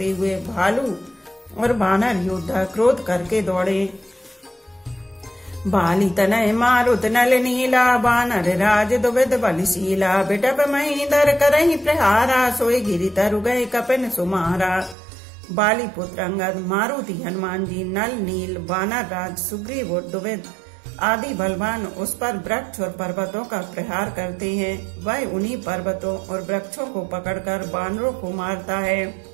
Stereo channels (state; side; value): drops out; left; at 15.0 s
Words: हुए भालू और बानर योद्धा क्रोध करके दौड़े। बाली तनय मारुत नल नीला बानर राज दुविध बलशीला बिटप महीधर करहि प्रहारा सोई गिरि तरु गए कपिन सुमारा। बाली पुत्र अंगद, मारुति हनुमान जी, नल नील वानर राज सुग्रीव और दुविध आदि बलवान उस पर वृक्ष और पर्वतों का प्रहार करते हैं। वह उन्हीं पर्वतों और वृक्षों को पकड़कर वानरों को मारता है।